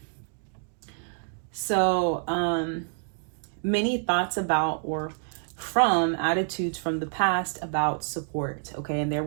So, many thoughts about or from attitudes from the past about support. Okay, and there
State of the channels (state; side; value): silent; left; digital silence